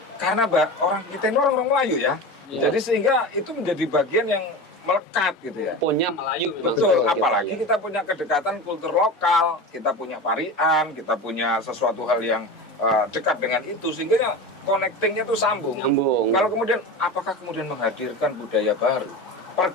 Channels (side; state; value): both; normal; correlation 0.28